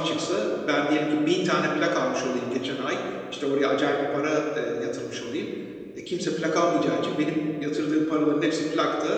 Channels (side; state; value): both; identical; correlation 1.00